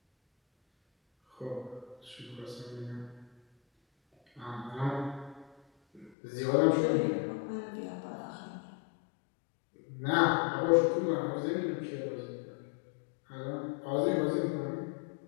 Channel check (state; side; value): drops out; right; at 6.1 s